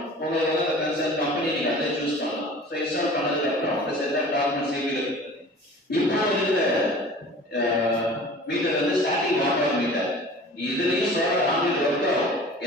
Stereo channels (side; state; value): both; normal; correlation 0.43